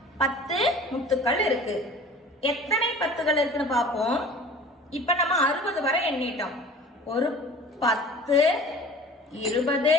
10 முத்துக்கள் இருக்கு. எத்தனை பத்துகள் இருக்குன்னு பார்ப்போம். இப்ப நம்ம 60 வரை எண்ணிட்டோம். ஒரு 10 20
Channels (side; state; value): both; normal; correlation 0.43